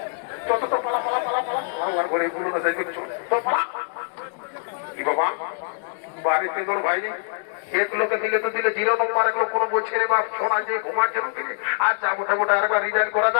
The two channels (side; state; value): right; silent; digital silence